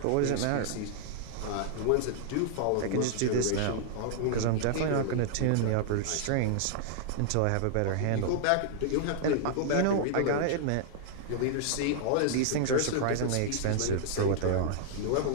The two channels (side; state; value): both; different; correlation -0.01